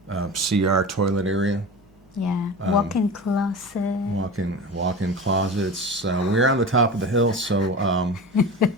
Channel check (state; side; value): normal; both; correlation 0.31